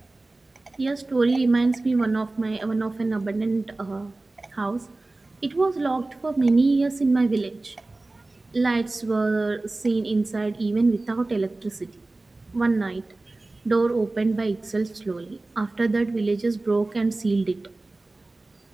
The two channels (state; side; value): quieter; left; 3.1 dB